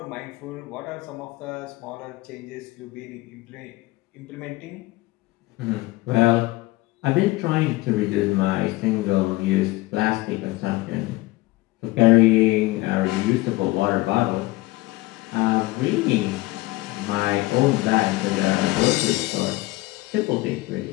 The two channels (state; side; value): quieter; right; 20.2 dB